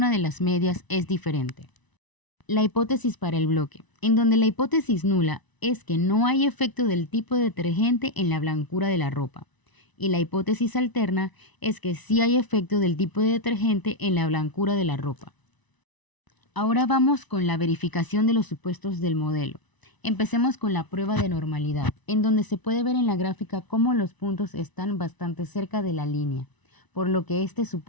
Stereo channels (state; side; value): late; right; 1.0 ms